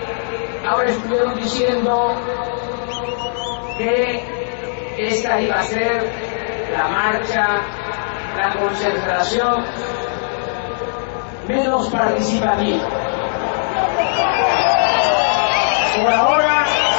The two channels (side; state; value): right; silent; digital silence